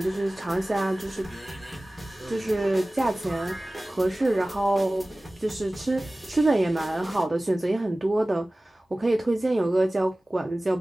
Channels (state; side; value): normal; both; correlation 0.98